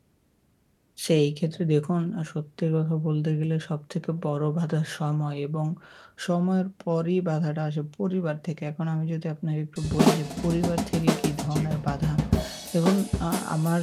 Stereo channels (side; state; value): both; identical; correlation 1.00